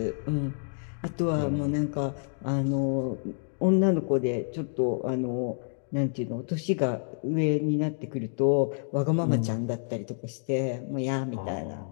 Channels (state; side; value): silent; right; digital silence